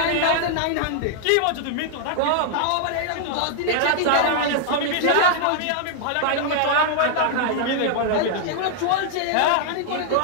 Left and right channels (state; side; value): different; both; correlation -0.01